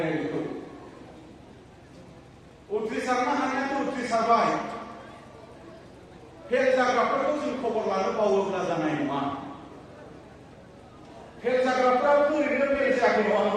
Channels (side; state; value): both; identical; correlation 1.00